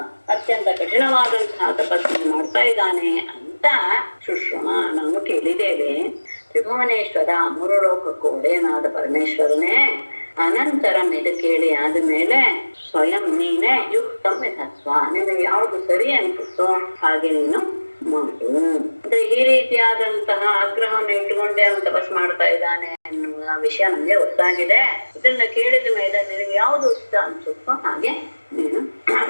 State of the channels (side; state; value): both; inverted; correlation -1.00